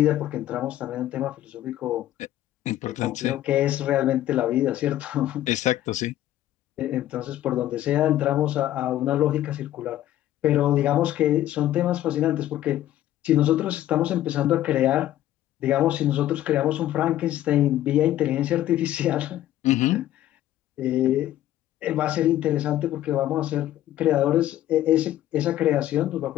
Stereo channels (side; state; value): right; quieter; 13.3 dB